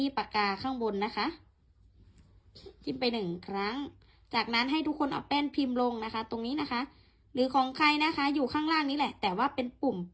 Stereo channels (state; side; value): identical; both; correlation 1.00